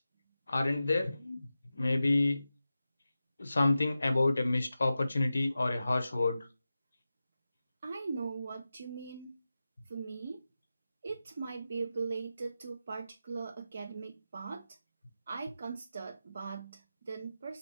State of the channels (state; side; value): inverted; both; correlation -0.92